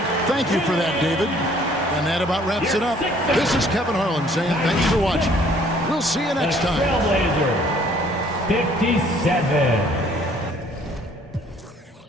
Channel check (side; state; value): both; normal; correlation 0.59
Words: thank you for that, David. And that about wraps it up. This is Kevin Harlan saying thanks for watching. We'll see you next time. Trailblazer 57.